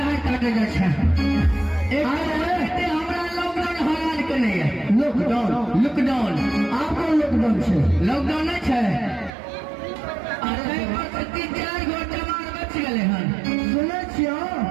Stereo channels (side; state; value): left; drops out; at 9.3 s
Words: है काटे जा छै। एक हमरा लॉकडाउन हराल के नहीं है। लॉकडाउन आपको लॉकडाउन छै। लॉकडाउन नहीं छै। अरे पर 3-4 गो जवान बच गेले हन। सुने छियो